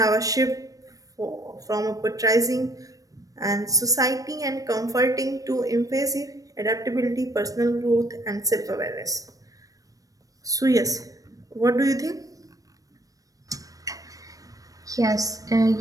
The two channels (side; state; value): left; late; 0.17 ms